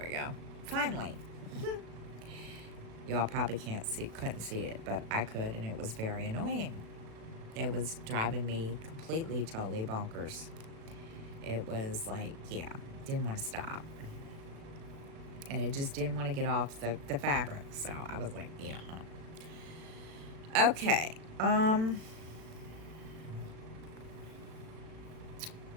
we go. Finally. Y'all probably couldn't see it, but I could, and it was very annoying. It was driving me completely, totally bonkers. It was like, yeah, didn't want to stop. And it just didn't want to get off the fabric. So I was like, yeah. Okay.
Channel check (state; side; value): late; left; 36 ms